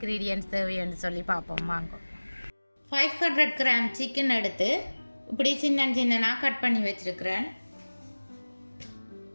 தேவைன்னு சொல்லி பார்ப்போம் வாங்க. 500 கிராம் சிக்கன் எடுத்து இப்படி சின்ன சின்னனாக கட் பண்ணி வச்சுருக்கிறேன்.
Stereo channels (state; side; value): inverted; both; correlation -1.00